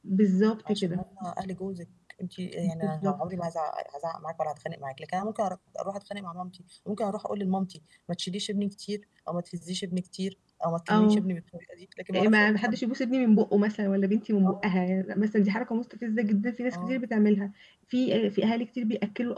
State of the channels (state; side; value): identical; both; correlation 1.00